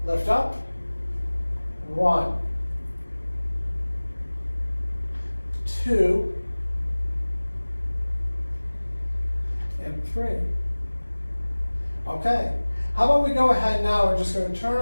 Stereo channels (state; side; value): inverted; both; correlation -1.00